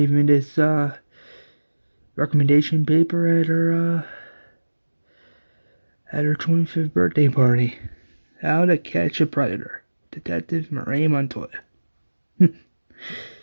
me this recommendation paper at her 25th birthday party. How to Catch a Predator. Detective Renee Montoya. Had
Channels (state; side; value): inverted; both; correlation -1.00